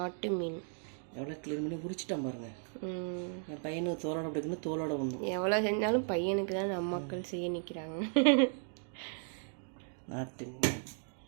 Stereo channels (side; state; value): left; silent; 54 dB below the other